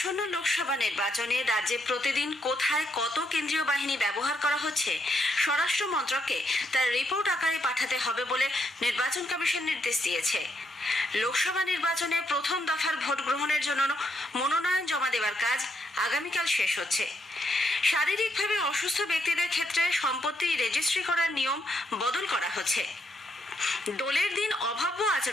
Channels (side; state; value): both; normal; correlation 0.77